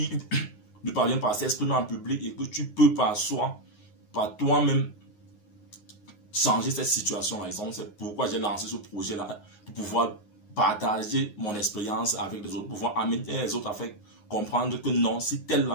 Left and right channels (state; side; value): late; right; 9.6 ms